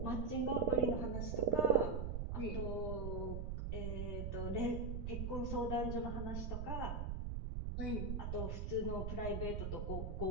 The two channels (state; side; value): noise; right; rumble, 2 dB below the sound